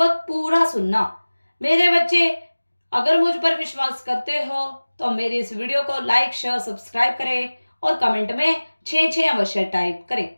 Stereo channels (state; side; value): inverted; both; correlation -1.00